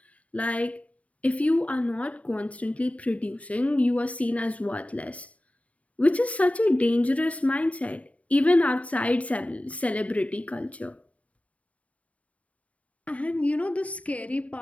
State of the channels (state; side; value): late; right; 0.067 ms